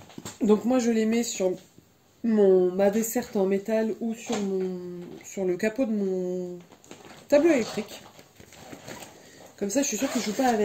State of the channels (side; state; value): both; identical; correlation 1.00